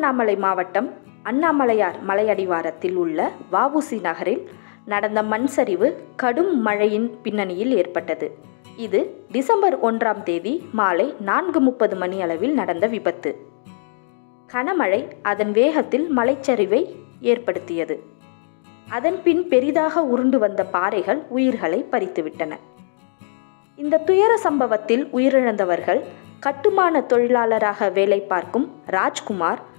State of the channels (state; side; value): silent; right; digital silence